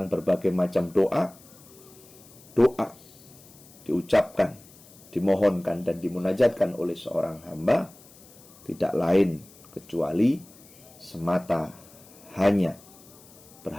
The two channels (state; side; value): noise; left; hiss, 23 dB below the sound